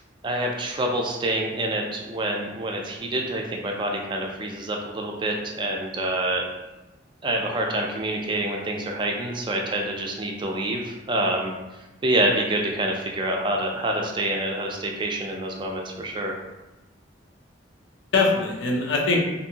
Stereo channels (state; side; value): normal; both; correlation 0.12